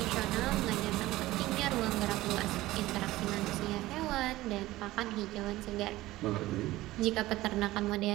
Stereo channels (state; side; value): quieter; left; 17.4 dB